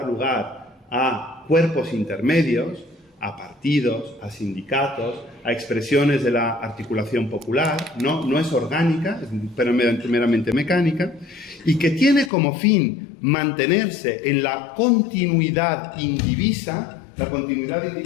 lugar a cuerpos intermedios, a partidos, a sindicatos, a expresiones de la articulación popular, no es orgánica, es meramente mecánica, y que tiene como fin mantenerse en la continuidad indivisa. La continuidad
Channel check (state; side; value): drops out; right; at 12.3 s